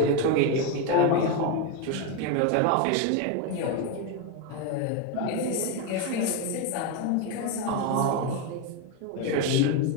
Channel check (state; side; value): different; both; correlation 0.02